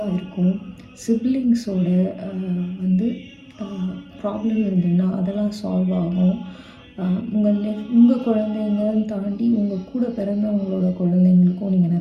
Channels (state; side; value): identical; both; correlation 1.00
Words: இருக்கும். சிப்ளிங்ஸோட வந்து ப்ராப்ளம் இருந்ததுன்னா அதெல்லாம் சால்வ் ஆகும். உங்கள் குழந்தைங்கன்னு தாண்டி உங்கள் கூட பிறந்தவங்களோட குழந்தைங்களுக்கும் நீங்கள்